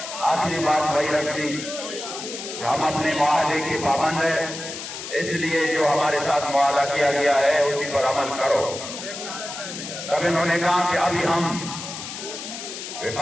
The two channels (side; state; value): left; noise; hiss, 9 dB below the sound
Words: आखिरी बात वही रख दी कि हम अपने मुआहदे के पाबंद है, इसलिए जो हमारे साथ मुआहदा किया गया है उसी पर अमल करो। तब इन्होंने कहा कि अभी हम